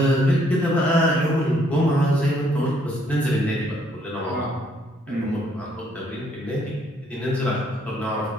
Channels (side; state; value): both; normal; correlation 0.68